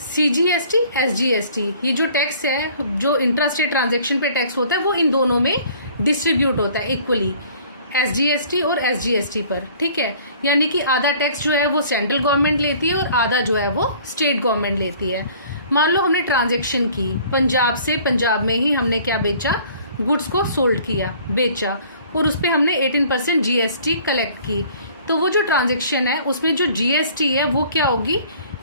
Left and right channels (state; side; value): inverted; both; correlation -0.53